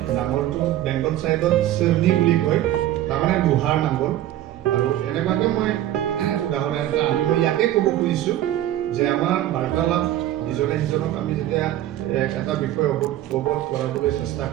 নাঙলটো বেংগল চাইডত চেৰনি বুলি কয় তাৰমানে লোহাৰ নাঙল আৰু এনেকুৱাকৈ মই উদাহৰণ এটা আনি মই ইয়াকে ক'ব খুজিছোঁ যে আমাৰ বাৰ্তালাপ ইজনে সিজনক আমি যেতিয়া এটা বিষয় অৱগত কৰাবলৈ চেষ্টা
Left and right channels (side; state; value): left; quieter; 13.2 dB